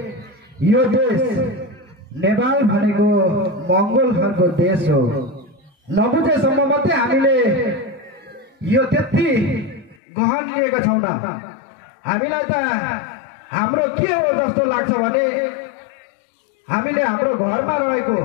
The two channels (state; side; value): drops out; right; at 10.0 s